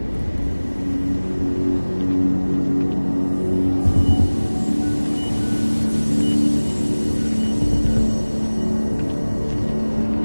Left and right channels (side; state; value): both; inverted; correlation -1.00